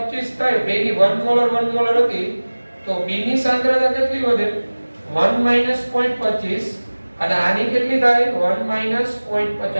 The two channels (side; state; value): both; inverted; correlation -1.00